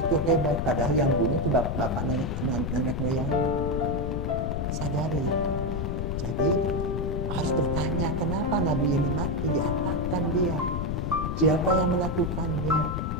hebat, padahal yang bunuh itu bapak nenek moyang. Sadari itu. Jadi harus bertanya, kenapa nabi ini mati, diapakan dia, siapa yang melakukannya.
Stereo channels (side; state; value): left; noise; rumble, 1 dB below the sound